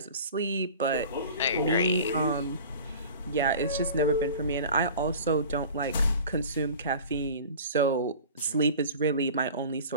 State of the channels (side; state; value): both; inverted; correlation -0.40